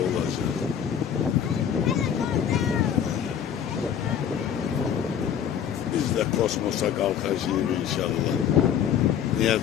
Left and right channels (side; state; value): right; quieter; 8.7 dB